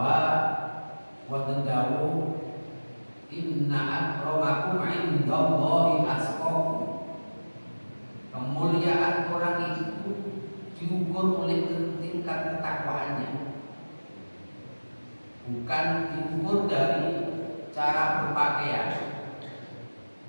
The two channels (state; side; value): inverted; both; correlation -1.00